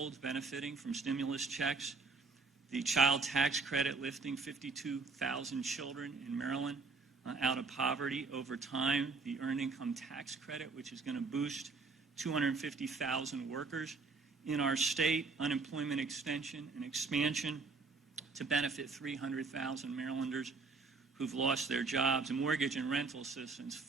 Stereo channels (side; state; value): left; quieter; 4.1 dB